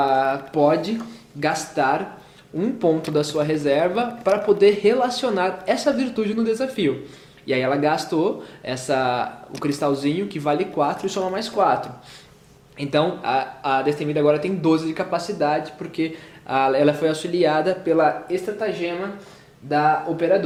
pode gastar um ponto da sua reserva para poder relacionar essa virtude no desafio. E aí ela gastou o cristalzinho que vale 4 e soma mais 4. Então a Destemida agora tem 12 de capacidade, porque ela foi auxiliada pela estratagema da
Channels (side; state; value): both; identical; correlation 1.00